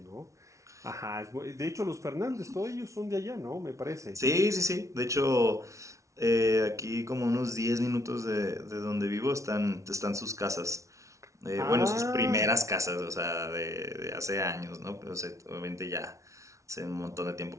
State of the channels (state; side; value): late; left; 0.15 ms